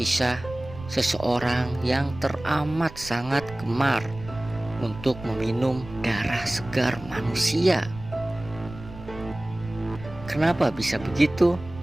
seseorang yang teramat sangat gemar untuk meminum darah segar manusia. Kenapa bisa begitu?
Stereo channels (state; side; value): noise; right; rumble, 15 dB below the sound